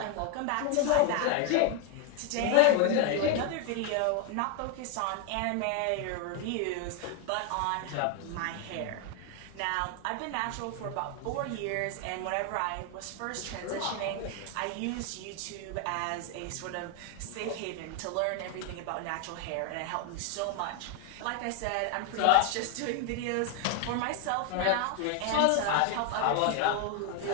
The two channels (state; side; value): different; both; correlation 0.01